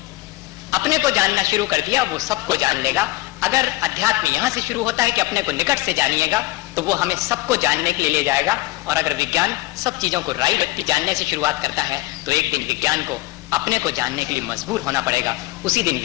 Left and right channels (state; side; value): quieter; right; 19.6 dB